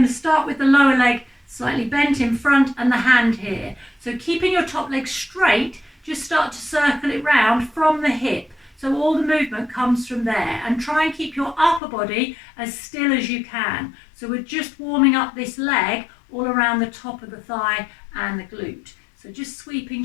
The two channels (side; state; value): right; drops out; at 11.8 s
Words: to start with the lower leg slightly bent in front and the hand here. So keeping your top leg straight, just start to circle it round from the hip. So all the movement comes from there, and try and keep your upper body as still as you can. So we're just warming up this leg all around the top of the thigh and the glute. So just sweeping